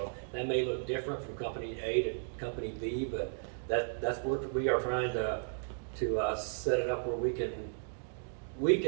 that may look different from company A to company B, but that's where we are trying to set it up where we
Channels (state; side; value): silent; left; digital silence